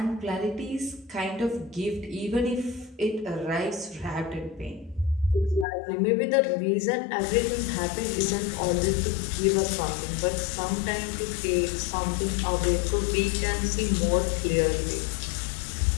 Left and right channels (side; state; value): right; drops out; at 5.7 s